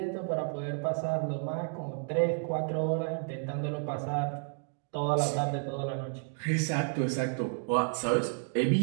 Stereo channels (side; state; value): left; silent; 57 dB below the other